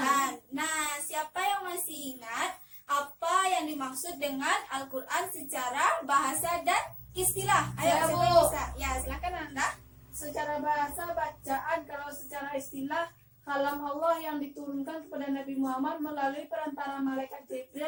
Nah, siapa yang masih ingat apa yang dimaksud dengan Al-Quran secara bahasa dan istilah? Ayo, Saya, siapa Bu. yang bisa? Ya, silakan Ananda. Secara bahasa bacaan, kalau secara istilah kalam Allah yang diturunkan kepada Nabi Muhammad melalui perantara malaikat Jibril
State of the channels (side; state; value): both; identical; correlation 1.00